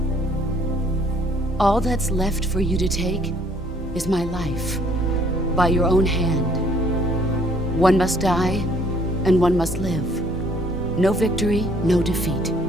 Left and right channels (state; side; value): normal; both; correlation 0.61